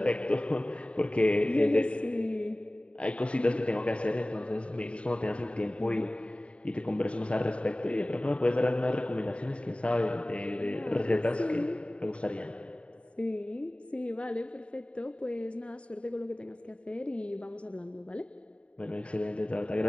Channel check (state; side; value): late; right; 0.060 ms